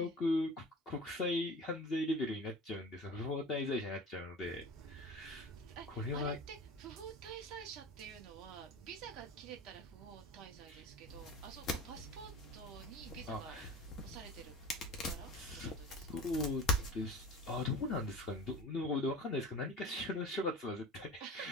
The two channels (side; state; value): both; normal; correlation 0.37